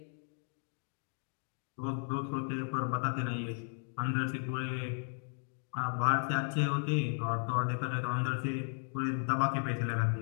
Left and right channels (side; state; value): right; silent; 54 dB below the other